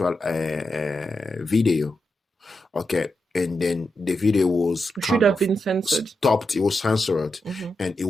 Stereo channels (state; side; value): normal; both; correlation 0.87